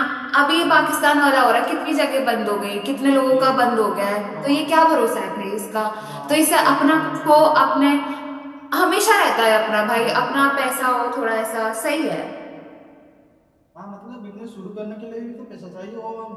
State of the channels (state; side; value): identical; both; correlation 1.00